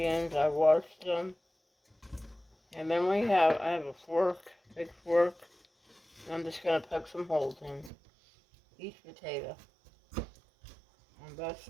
I washed them. And then I have a fork, big fork. And I'm just going to poke some holes in each potato on both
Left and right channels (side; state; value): left; drops out; at 7.9 s